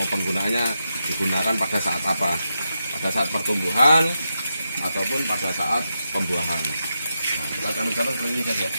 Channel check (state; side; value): inverted; both; correlation -0.87